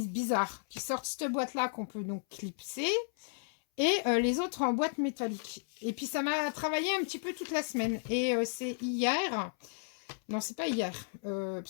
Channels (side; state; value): right; silent; 55 dB below the other